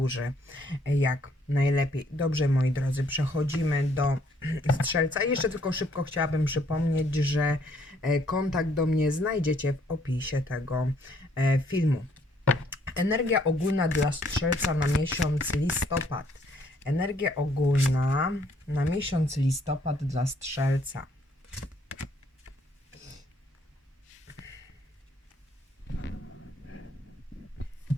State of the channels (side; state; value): both; normal; correlation 0.66